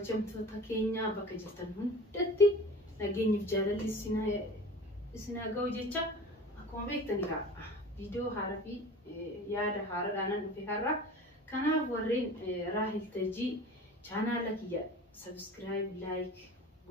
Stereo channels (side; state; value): both; normal; correlation 0.38